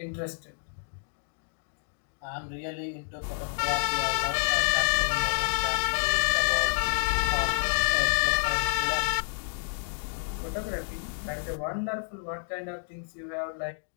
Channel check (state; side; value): silent; right; digital silence